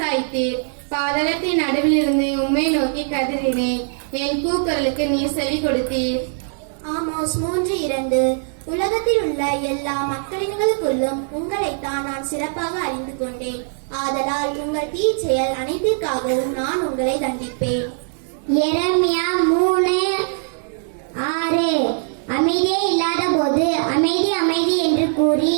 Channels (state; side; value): silent; left; digital silence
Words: பாதாளத்தின் நடுவிலிருந்து உம்மை நோக்கி கதறினேன். என் கூக்குரலுக்கு நீர் செவி கொடுத்தீர். ஆமோஸ் 3:2. உலகத்தில் உள்ள எல்லா மக்களினங்களுக்குள்ளும் உங்களைத்தான் நான் சிறப்பாக அறிந்து கொண்டேன். ஆதலால் உங்கள் தீச்செயல் அனைத்திற்காகவும் நான் உங்களை தண்டிப்பேன். எரேமியா 3:6. அமைதியே இல்லாத போது அமைதி அமைதி என்று கூறி